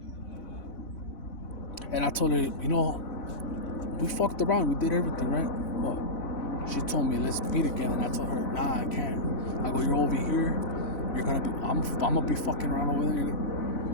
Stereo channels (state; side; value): late; right; 4.0 ms